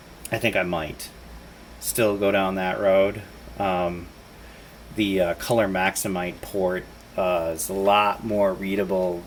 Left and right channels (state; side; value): identical; both; correlation 1.00